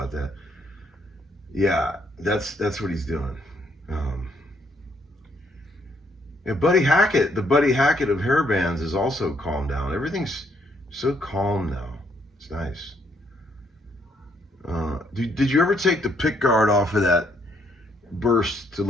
that. Yeah, that's what he's doing. Yeah, Buddy Hackett, the Buddy Hackett of hair bands, is also calmed down. Everything's so calm now. It's nice. Did you ever take the pick guard off of that burst to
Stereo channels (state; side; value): normal; both; correlation 0.71